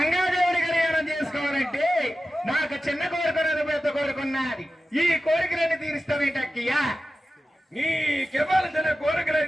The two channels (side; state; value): both; normal; correlation 0.93